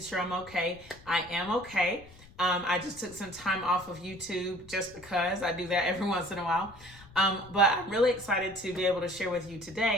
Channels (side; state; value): left; noise; rumble, 22 dB below the sound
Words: sure I'm okay. I am okay. I just took some time off of YouTube just because I do that every once in a while. But I'm really excited to be able to share with you